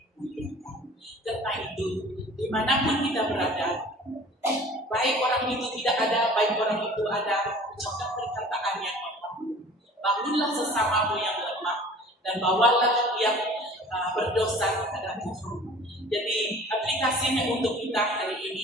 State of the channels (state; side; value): normal; both; correlation 0.46